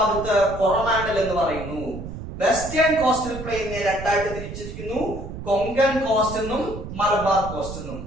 കൊറോമാൻഡൽ എന്ന് പറയുന്നു. വെസ്റ്റേൺ കോസ്റ്റൽ പ്ലെയിനെ രണ്ടായിട്ട് തിരിച്ചിരിക്കുന്നു, കൊങ്കൺ കോസ്റ്റ് എന്നും മലബാർ കോസ്റ്റ് എന്നും.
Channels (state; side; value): noise; right; rumble, 9 dB below the sound